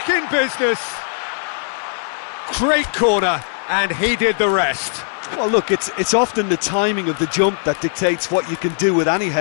in business. Great corner, and he did the rest. Well, look, it's often the timing of the jump that dictates what you can do with any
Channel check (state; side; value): silent; right; 65 dB below the other